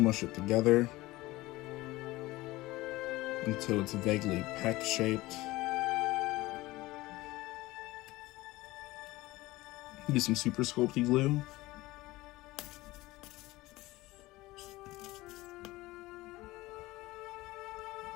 it together until it's vaguely peck shaped. Use some super sculpty glue.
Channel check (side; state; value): right; quieter; 19.2 dB